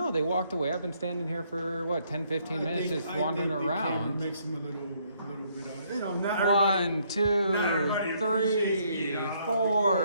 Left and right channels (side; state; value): both; inverted; correlation -0.69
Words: they walked away. I've been standing here for what, 10, 15 minutes, just wandering I around. Makes him a little bit of, not everybody. 1, 2, everybody 3, appreciates me,